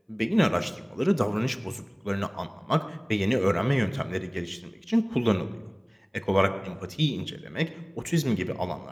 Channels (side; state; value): both; identical; correlation 1.00